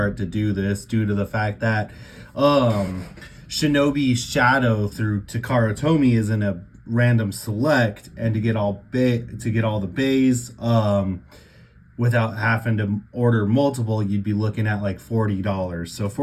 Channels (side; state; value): both; identical; correlation 1.00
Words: to do this due to the fact that Shinobi Shadow through Takara Tomy is in a random select, and to get all the bays without having to order multiple, you'd be looking at like $40. So